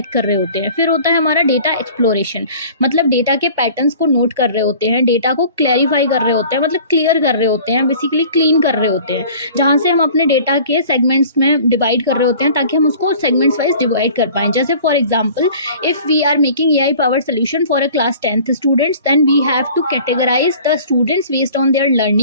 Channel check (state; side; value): inverted; both; correlation -0.46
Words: कर रहे होते हैं। फिर होता है हमारा डेटा एक्सप्लोरेशन, मतलब डेटा के पैटर्न्स को नोट कर रहे होते हैं, डेटा को क्लैरिफाई कर रहे होते हैं, मतलब क्लियर कर रहे होते हैं, बेसिकली क्लीन कर रहे होते हैं, जहाँ से हम अपने डेटा के सेगमेंट्स में डिवाइड कर रहे होते हैं ताकि हम उसको सेगमेंट्स वाइज डिवाइड कर पाएँ। जैसे for example, if we are making AI power solution for a class 10th students, then we have to categorize the students based on their